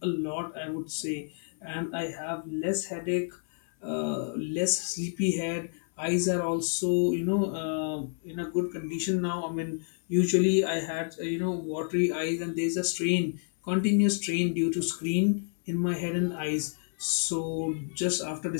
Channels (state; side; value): silent; right; 58 dB below the other